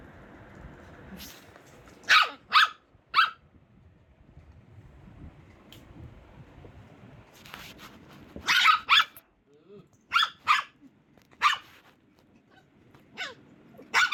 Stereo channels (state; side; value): identical; both; correlation 1.00